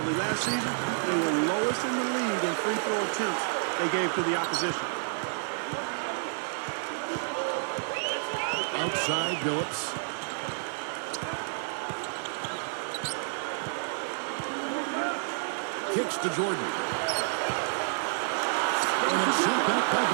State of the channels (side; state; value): left; silent; digital silence